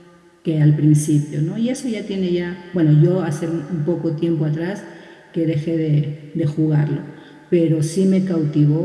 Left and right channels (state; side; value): identical; both; correlation 1.00